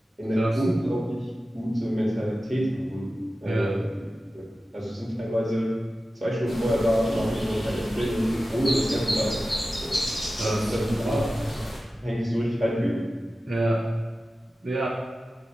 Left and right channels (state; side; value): normal; both; correlation 0.94